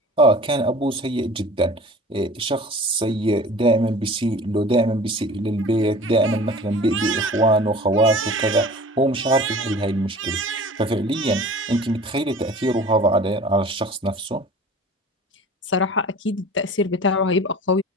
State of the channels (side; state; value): both; normal; correlation 0.42